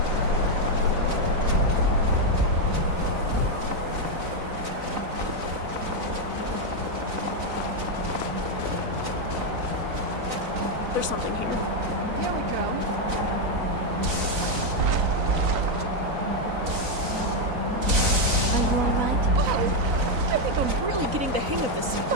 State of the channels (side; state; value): left; late; 3.9 ms